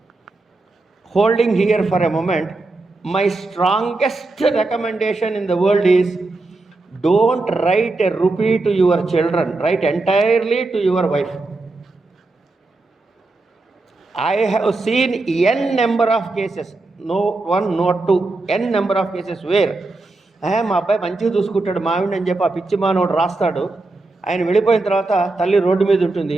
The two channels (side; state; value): left; quieter; 3.2 dB